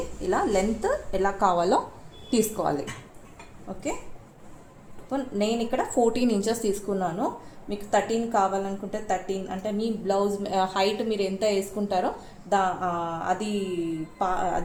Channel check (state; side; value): identical; both; correlation 1.00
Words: ఇలా లెంత్ ఎలా కావాలో తీసుకోవాలి. ఓకే, నేను ఇక్కడ 14 ఇంచెస్ తీసుకున్నాను. మీకు 13 కావాలనుకుంటే 13, అంటే మీ బ్లౌజ్ హైట్ మీరు ఎంత వేసుకుంటారో